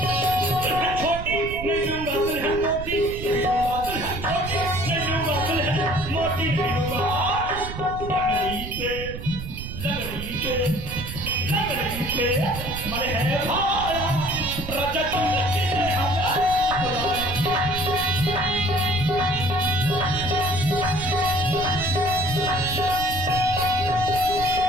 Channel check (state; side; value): noise; right; rumble, 9 dB below the sound